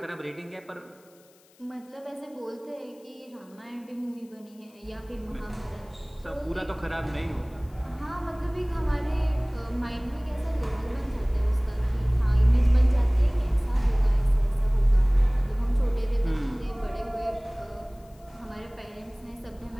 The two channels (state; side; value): noise; left; hiss, 30 dB below the sound